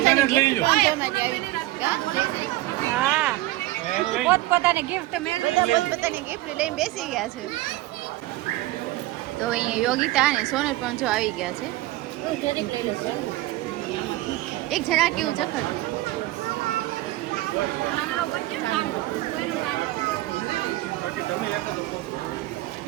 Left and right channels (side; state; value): left; quieter; 17.1 dB